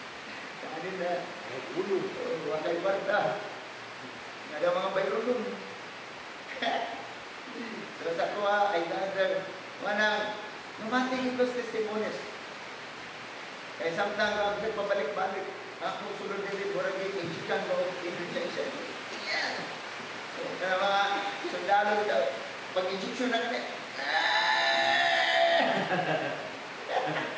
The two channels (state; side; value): identical; both; correlation 1.00